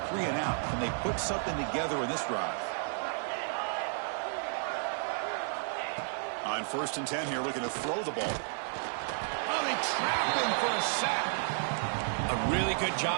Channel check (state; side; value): silent; left; digital silence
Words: 3-and-out. Can they put something together in this drive? On 1st and 10 here, looking to throw the ball. Oh, they trap him for a sack. A really good